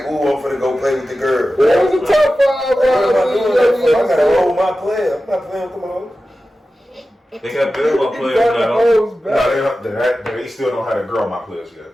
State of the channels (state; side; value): normal; both; correlation 0.94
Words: ooh, I'm finna go play with the girl. That was a top 5. I gotta roll my player. I'm not playing with them hoes. They got basketball players now. No, they still don't have to grow my players yet.